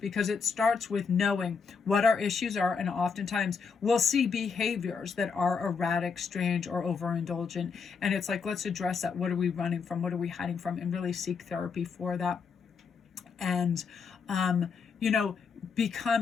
it starts with knowing what our issues are, and oftentimes we'll see behaviors that are erratic, strange, or overindulgent, and it's like, let's address that. What are we running from? What are we hiding from? And really seek therapy for that. And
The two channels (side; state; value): right; quieter; 5.6 dB